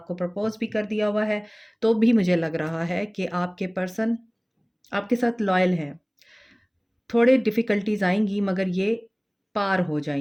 प्रपोज़ भी कर दिया हुआ है, तो भी मुझे लग रहा है कि आपके पर्सन आपके साथ लॉयल हैं। थोड़े डिफ़िकल्टीज़ आएँगी मगर ये पार हो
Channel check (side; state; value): both; identical; correlation 1.00